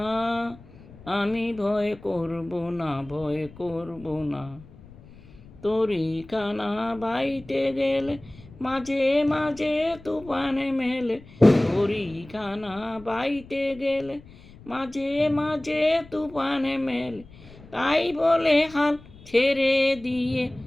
আমি ভয় করব না, ভয় করব না। তরিখানা বাইতে গেলে মাঝে মাঝে তুফানে মেলে, তরিখানা বাইতে গেলে মাঝে মাঝে তুফানে মেলে, তাই বলে হাল ছেড়ে দিয়ে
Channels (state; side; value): noise; left; rumble, 21 dB below the sound